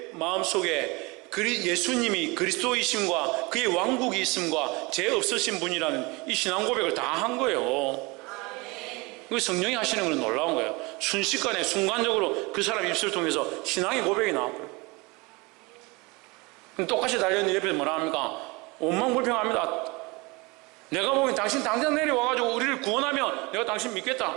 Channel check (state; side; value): quieter; left; 25.7 dB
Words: 마음속에 예수님이 그리스도이심과 그의 왕국이 있음과 죄 없으신 분이라는 이 신앙 고백을 다 한 거예요. 그 성령이 하시는 건 놀라운 거예요. 순식간에 순간적으로 그 사람 입술을 통해서 신앙의 고백이 나왔고요. 똑같이 달려있는 옆에서 뭐라 합니까? 원망불평합니다. 내가 보기엔 당신 당장 내려와가지고 우리를 구원하면 내가 당신 믿겠다.